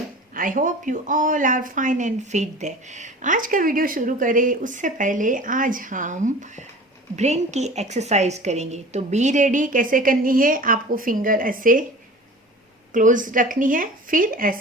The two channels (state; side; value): normal; both; correlation 0.40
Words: I hope you all are fine and fit there. आज का video शुरू करें उससे पहले आज हम ब्रेन की एक्सरसाइज करेंगे। तो बी रेडी कैसे करनी है, आपको फिंगर ऐसे क्लोज रखनी है, फिर